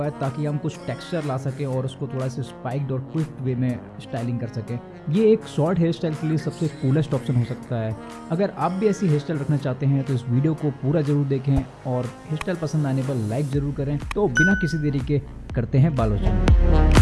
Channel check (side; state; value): both; identical; correlation 1.00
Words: है ताकि हम कुछ टेक्सचर ला सकें और उसको थोड़ा सा स्पाइक्ड और क्विक वे में स्टाइलिंग कर सकें। ये एक शॉर्ट हेयर स्टाइल के लिए सबसे कूलेस्ट ऑप्शन हो सकता है। अगर आप भी ऐसी हेयर स्टाइल रखना चाहते हैं तो इस वीडियो को पूरा जरूर देखें और हेयर स्टाइल पसंद आने पर लाइक जरूर करें। तो बिना किसी देरी के करते हैं बालोचन।